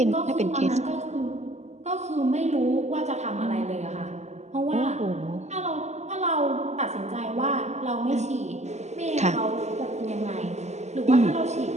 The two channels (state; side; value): late; left; 0.33 ms